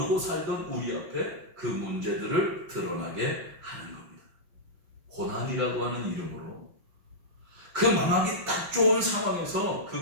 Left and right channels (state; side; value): late; left; 6.0 ms